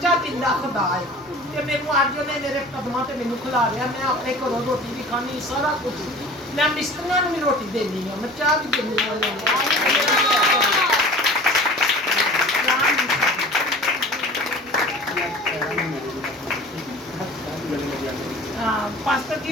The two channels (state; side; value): normal; both; correlation 0.42